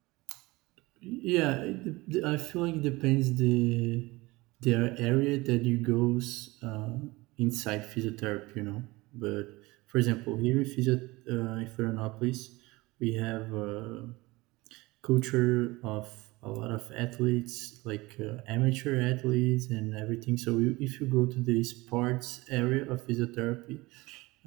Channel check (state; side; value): quieter; left; 21.7 dB